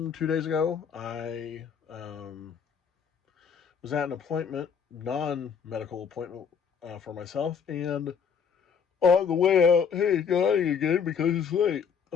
2 days ago, I was at an appointment, non-medical appointment for myself, and on the way out, hey, yawning again because it's late.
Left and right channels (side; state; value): right; quieter; 6.7 dB